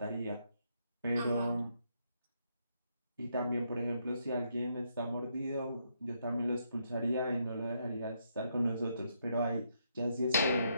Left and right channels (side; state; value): both; inverted; correlation -0.77